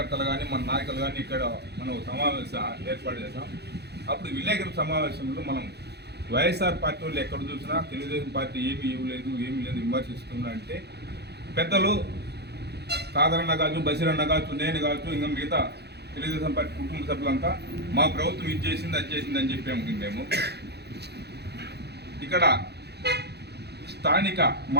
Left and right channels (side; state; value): left; late; 0.48 ms